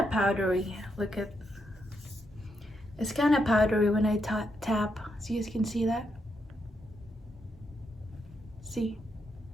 powdery. Look at, it's kind of powdery when I tap, so you can see that. See,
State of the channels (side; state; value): both; normal; correlation 0.80